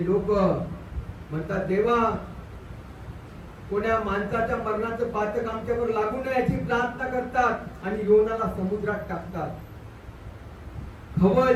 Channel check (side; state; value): both; identical; correlation 1.00